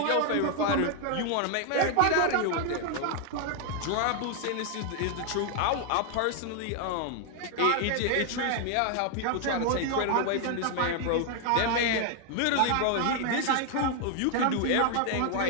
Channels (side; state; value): both; different; correlation 0.00